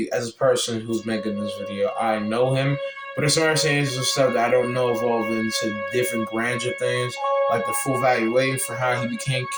as a person who's making this video, I know him, but there's some saying some stuff that I don't know evolved into different grandeur things, like the full valuation for how he became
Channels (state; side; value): identical; both; correlation 1.00